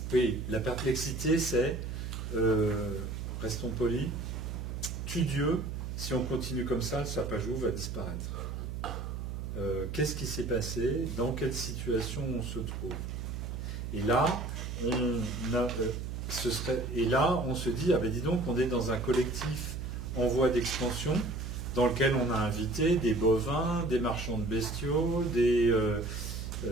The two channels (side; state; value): right; noise; hum, 5 dB below the sound